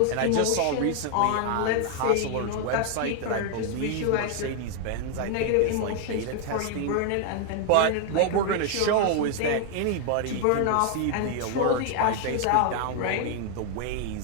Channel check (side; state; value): both; different; correlation 0.00